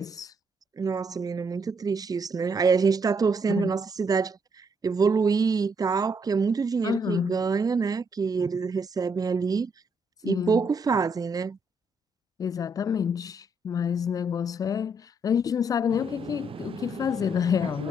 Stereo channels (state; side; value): normal; both; correlation 0.74